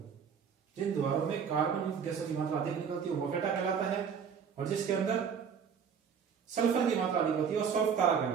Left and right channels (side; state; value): left; quieter; 6.9 dB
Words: जिन द्वारों में कार्बन युक्त गैसों की मात्रा अधिक निकलती हो, मोफेटा कहलाता है। और जिसके अंदर सल्फर की मात्रा अधिक होती है, वो सल्फ तारा